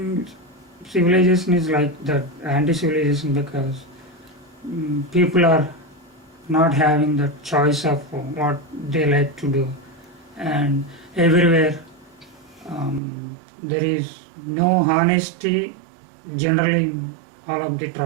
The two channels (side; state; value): left; drops out; at 13.0 s